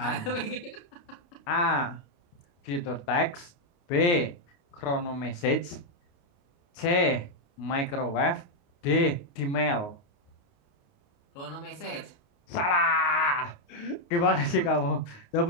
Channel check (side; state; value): right; late; 29 ms